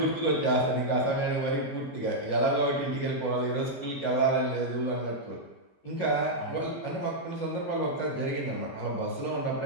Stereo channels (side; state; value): right; late; 14 ms